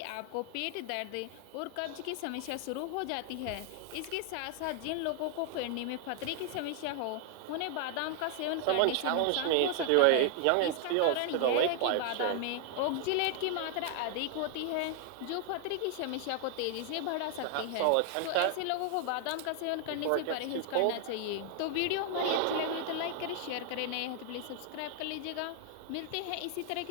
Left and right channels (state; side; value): different; both; correlation 0.00